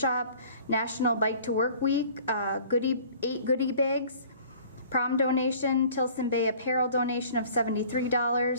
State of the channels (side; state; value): both; inverted; correlation -0.50